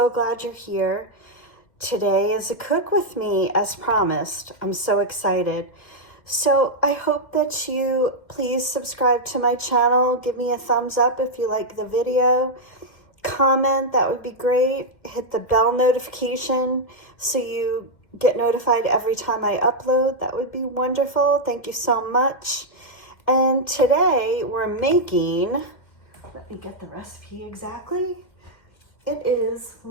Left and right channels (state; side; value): late; right; 2.1 ms